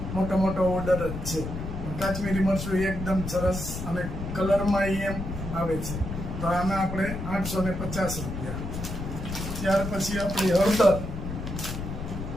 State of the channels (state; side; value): noise; left; rumble, 6 dB below the sound